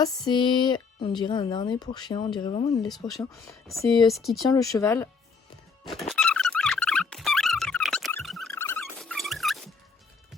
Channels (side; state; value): right; quieter; 5.0 dB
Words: c'est, on dirait un harnais pour chien, on dirait vraiment une laisse pour chien. C'est ce qui tient le cheval.